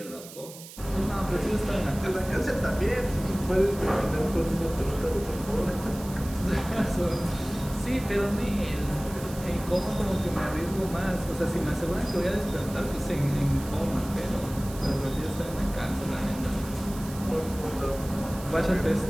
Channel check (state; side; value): noise; right; hiss, 16 dB below the sound